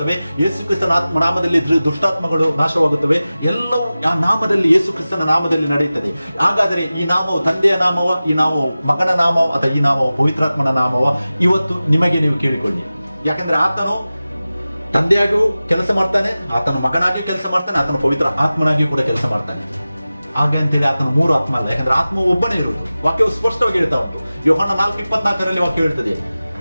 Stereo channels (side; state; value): both; inverted; correlation -0.96